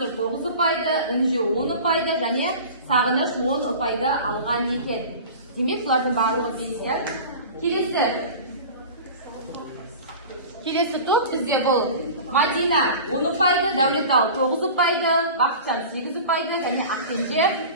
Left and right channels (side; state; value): both; inverted; correlation -0.37